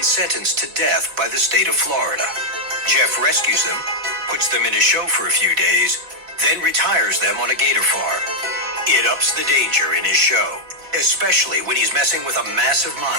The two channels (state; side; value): late; left; 4.4 ms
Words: sentenced to death by the state of Florida. Jeff rescues them, puts them in his show for a few days, then retires them on a gator farm. It ups the danger in his show, especially when he's messing with a massive